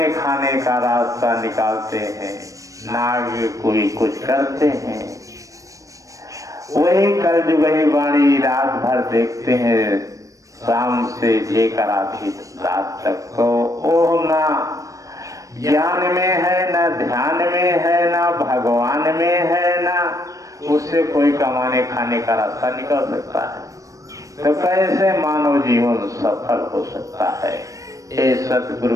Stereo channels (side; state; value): left; late; 0.16 ms